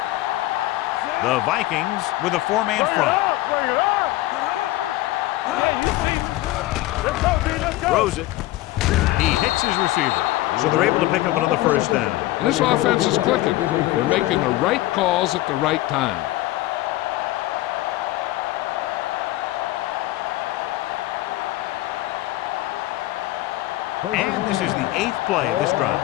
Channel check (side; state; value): right; quieter; 17.2 dB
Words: can do it, man. The Vikings with a four-man front. Bring it up. Good shoot. Let's go, B. Let's go. Throws it. He hits his receiver. So they're able to pick up another first down. And this offense is clicking. They're making the right calls at the right time. And this is the 8th play of this drive.